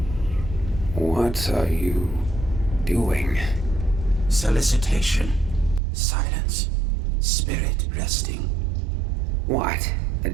What are you doing? Solicitation. Silence. Spirit resting. What? The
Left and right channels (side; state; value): left; drops out; at 5.8 s